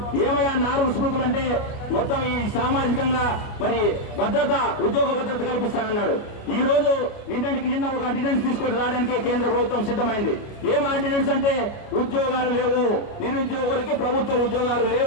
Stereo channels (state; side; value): late; right; 29 ms